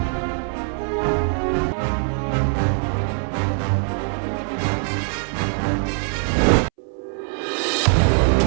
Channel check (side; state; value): left; silent; 64 dB below the other